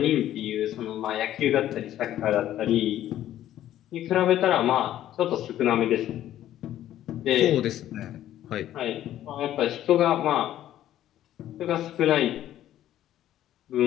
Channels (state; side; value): quieter; right; 12.5 dB